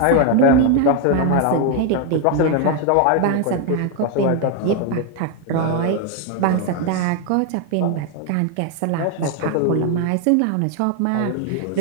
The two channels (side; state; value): both; different; correlation 0.01